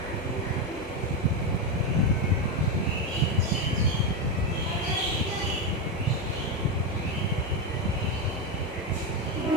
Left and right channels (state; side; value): normal; both; correlation 0.10